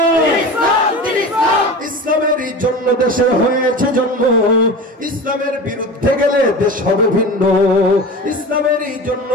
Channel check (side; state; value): both; normal; correlation 0.32